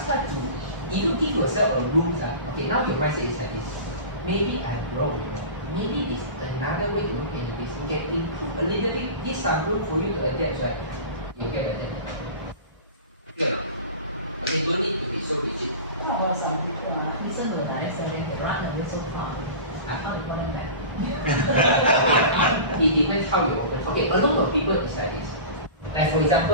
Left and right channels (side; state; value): both; inverted; correlation -0.34